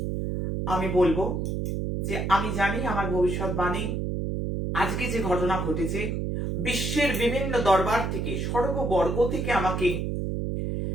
আমি বলবো, যে আমি জানি আমার ভবিষ্যৎবাণী, আজকে যে ঘটনা ঘটেছে, বিশ্বের বিভিন্ন দরবার থেকে, সর্ববর্গ থেকে আমাকে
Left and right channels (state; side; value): noise; right; hum, 1 dB below the sound